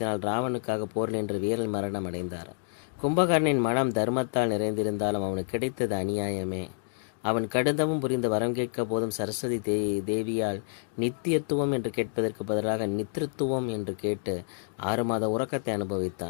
ராவனுக்காக போரில் என்று வீரல் மரணம் அடைந்தார். கும்பகர்ணனின் மனம் தர்மத்தால் நிறைந்திருந்தாலும் அவனுக்கு கிடைத்தது அநியாயமே. அவன் கடுந்தவும் புரிந்து வரம் கேட்க போதும் சரஸ்வதி தேவியால் நித்தியத்துவம் என்று கேட்பதற்கு பதிலாக நித்திருத்துவம் என்று கேட்டு 6 மாத உறக்கத்தை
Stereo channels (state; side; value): silent; right; 59 dB below the other